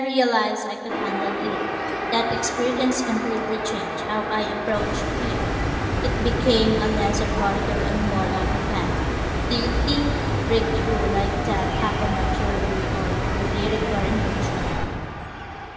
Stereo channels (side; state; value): both; identical; correlation 1.00